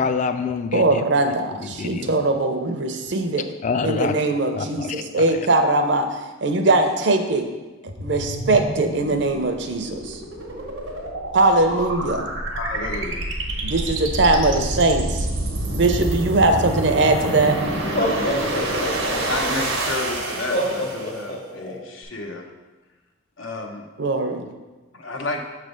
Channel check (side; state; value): both; normal; correlation -0.11